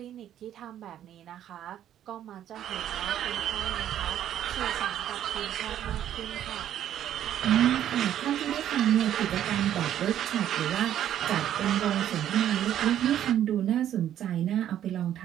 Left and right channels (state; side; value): quieter; left; 11.0 dB